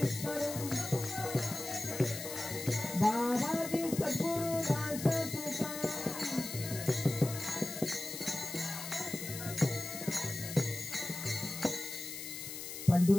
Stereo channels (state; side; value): noise; left; hiss, 8 dB below the sound